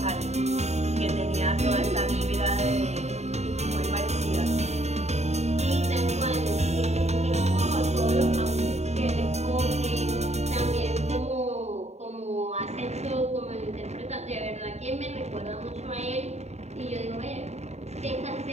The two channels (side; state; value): left; late; 0.32 ms